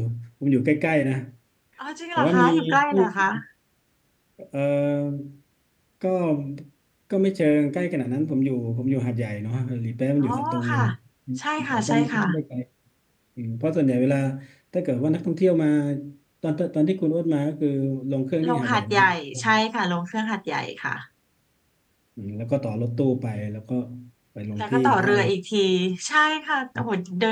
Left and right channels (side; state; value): both; identical; correlation 1.00